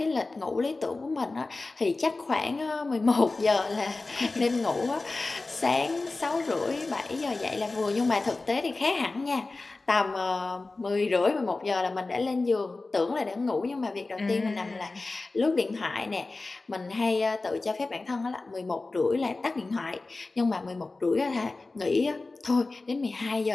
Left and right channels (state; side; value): quieter; right; 3.4 dB